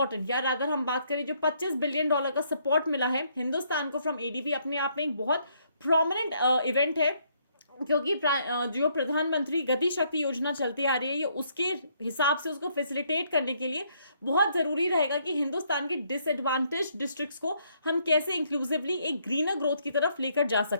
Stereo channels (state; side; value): inverted; both; correlation -0.70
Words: या अगर हम बात करें जो $25 बिलियन का सपोर्ट मिला है हिंदुस्तान को फ्रॉम एडीबी, अपने आप में एक बहुत प्रोमिनेंट इवेंट है, क्योंकि जो प्रधानमंत्री गति शक्ति योजना चलती आ रही है, ये उसके हिसाब से उसको फैसिलिटेट करने के लिए बहुत जरूरी रहेगा कि हिंदुस्तान के डिसएडवांटेज डिस्ट्रिक्ट्स को हम कैसे इंक्लूसिवली एक ग्रीनर ग्रोथ की तरफ लेकर जा